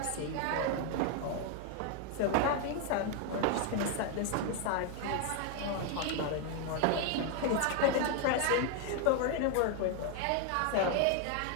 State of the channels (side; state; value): both; different; correlation 0.00